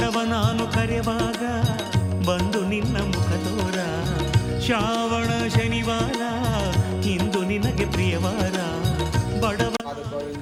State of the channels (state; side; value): identical; both; correlation 1.00